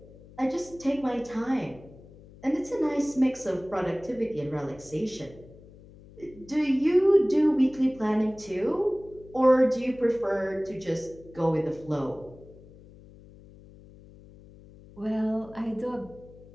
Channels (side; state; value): left; noise; hum, 21 dB below the sound